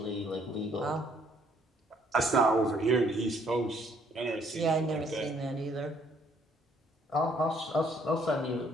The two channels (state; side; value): normal; both; correlation 0.65